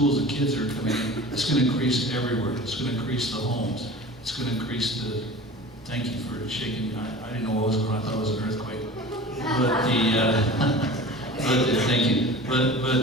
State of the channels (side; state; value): both; normal; correlation 0.38